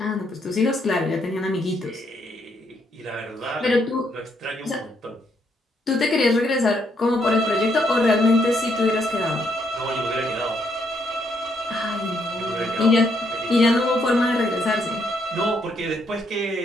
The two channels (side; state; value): both; normal; correlation 0.74